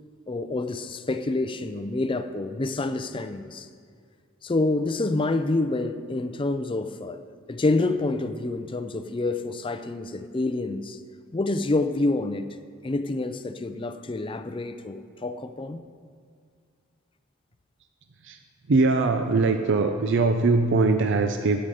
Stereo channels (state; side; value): normal; both; correlation 0.53